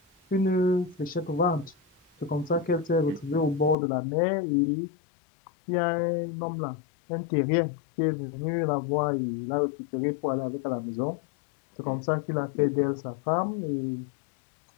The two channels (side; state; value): right; drops out; at 3.8 s